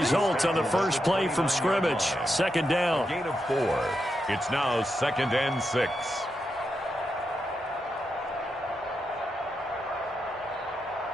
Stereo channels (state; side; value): normal; both; correlation 0.85